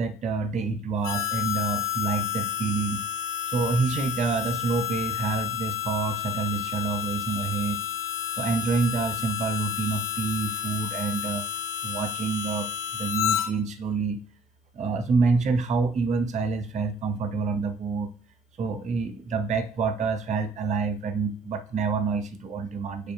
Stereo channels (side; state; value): both; normal; correlation 0.48